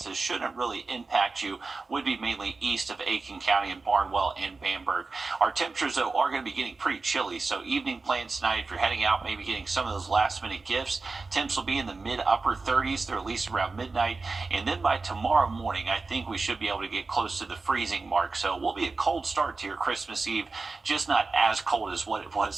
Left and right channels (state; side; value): quieter; left; 3.9 dB